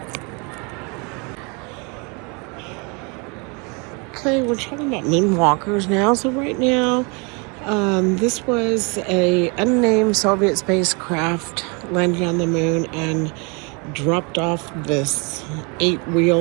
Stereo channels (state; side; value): quieter; left; 31.8 dB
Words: okay, we're talking about moonwalkers now. So right now, this was a unnamed Soviet spacecraft landing on the moon and dropped off this